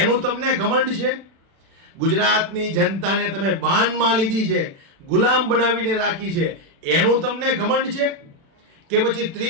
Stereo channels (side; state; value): left; late; 36 ms